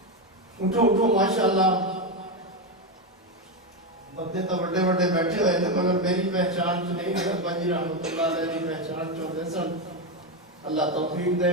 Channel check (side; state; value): both; normal; correlation 0.10